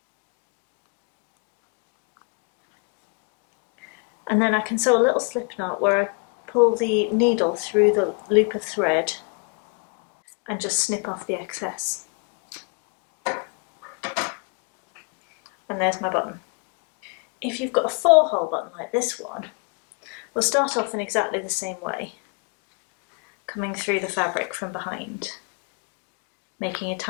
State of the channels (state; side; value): quieter; right; 35.4 dB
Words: And then I can sew a little slip knot where I pull the needle through the loop of thread and just snip off the excess. And there's my button. If you've got a 4-hole button like this one, we'll start off in exactly the same way, coming through the fabric from behind, making a